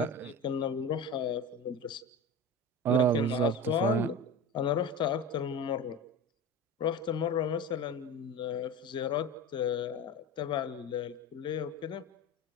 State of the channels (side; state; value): both; normal; correlation 0.29